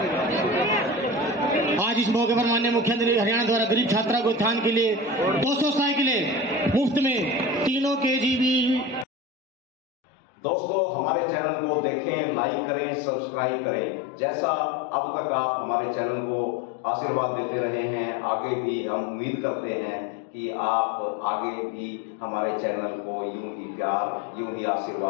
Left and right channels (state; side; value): drops out; right; at 9.1 s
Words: आज इस मौके पर माननीय मुख्यमंत्री हरियाणा द्वारा गरीब छात्रा को उत्थान के लिए 200 साइकिलें मुफ्त में, तीनों KGB। दोस्तों, हमारे चैनल को देखें, लाइक करें, सब्सक्राइब करें। जैसा अब तक आप हमारे चैनल को आशीर्वाद देते रहे हैं, आगे भी हम उम्मीद करते हैं कि आप आगे भी हमारे चैनल को यूं ही प्यार, यूं ही